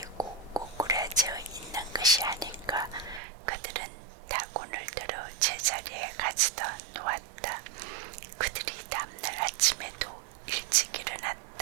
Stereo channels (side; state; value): left; drops out; at 3.2 s